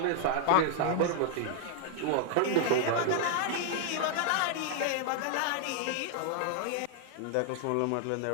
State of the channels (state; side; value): different; both; correlation 0.00